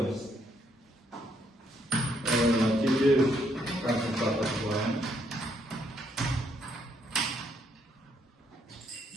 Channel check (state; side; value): normal; both; correlation 0.71